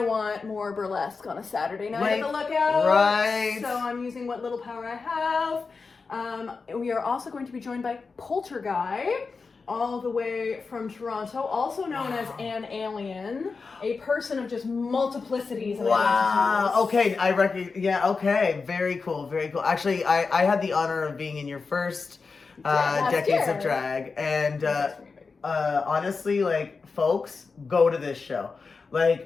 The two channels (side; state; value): right; quieter; 4.6 dB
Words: want more burlesque on a Saturday night at the Lookout. Right. So I'm using what little power I have. We are also going to be joined by Polterguy, all the way from Toronto, also known as an alien, a person of just multiplicities. Wow. Okay, I reckon. Yeah. Okay. Very cool. Very cool. Actually, I had the honor of being in your first Decades of Drag, and honestly, like, folks, go to this show.